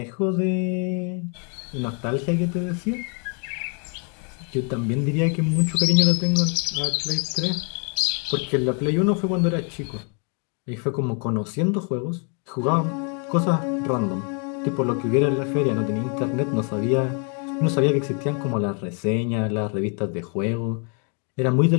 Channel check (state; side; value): quieter; right; 39.5 dB